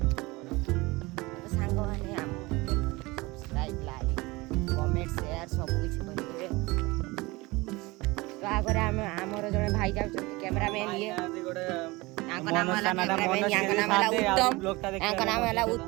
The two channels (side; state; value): left; quieter; 22.6 dB